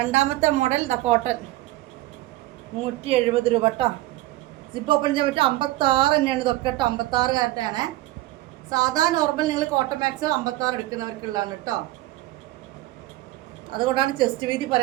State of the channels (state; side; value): quieter; left; 17.1 dB